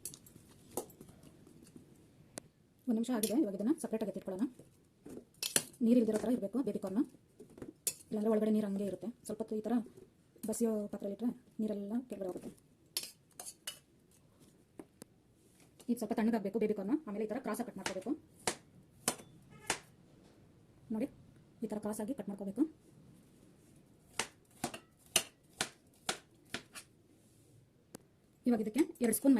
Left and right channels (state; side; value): identical; both; correlation 1.00